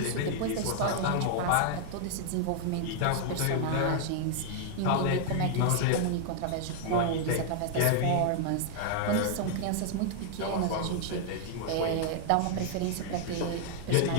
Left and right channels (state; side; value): different; both; correlation 0.00